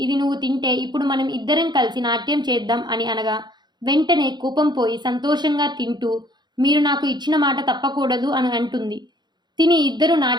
ఇది నువ్వు తింటే ఇప్పుడు మనం ఇద్దరం కలిసి నాట్యం చేద్దాం అని అనగా వెంటనే కోపం పోయి సంతోషంగా తింటూ మీరు నాకు ఇచ్చిన మాట తప్పకూడదు అని అంటుంది. తిని ఇద్దరు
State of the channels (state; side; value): late; left; 0.21 ms